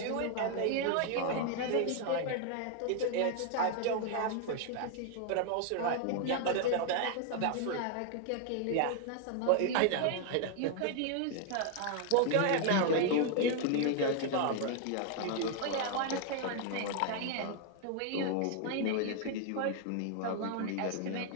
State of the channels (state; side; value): different; both; correlation 0.00